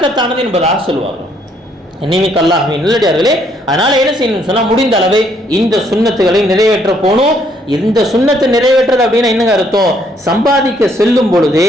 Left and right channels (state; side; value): normal; both; correlation 0.68